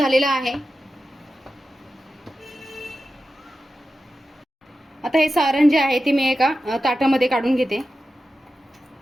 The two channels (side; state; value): both; normal; correlation 0.92